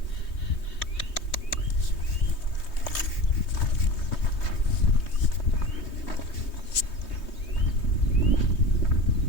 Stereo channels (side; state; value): right; late; 3.2 ms